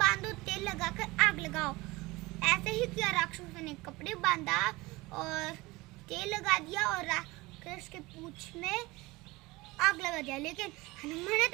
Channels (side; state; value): left; quieter; 21.7 dB